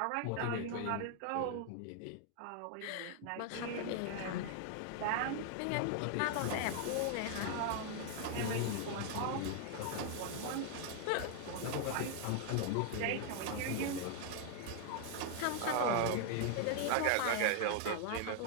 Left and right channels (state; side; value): different; both; correlation 0.00